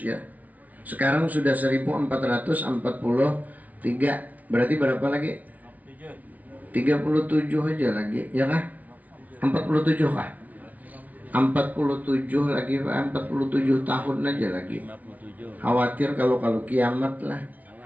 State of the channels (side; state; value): left; late; 0.073 ms